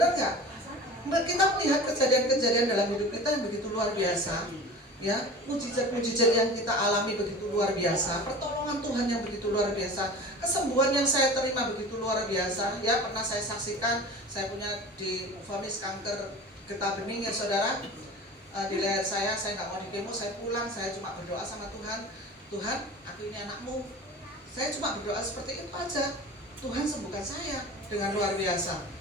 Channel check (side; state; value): both; normal; correlation 0.37